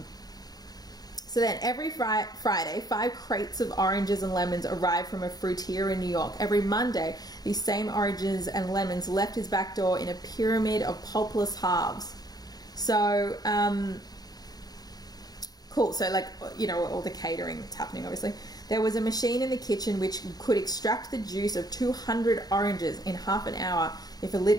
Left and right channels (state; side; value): late; right; 0.19 ms